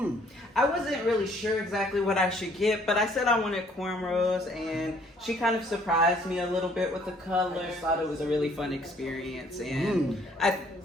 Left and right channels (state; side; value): normal; both; correlation 0.61